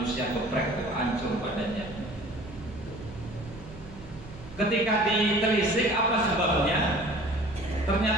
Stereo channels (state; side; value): noise; right; hum, 17 dB below the sound